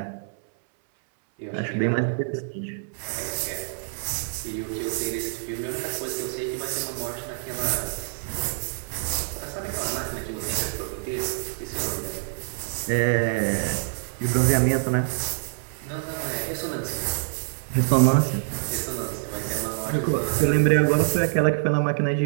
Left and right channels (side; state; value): left; silent; 61 dB below the other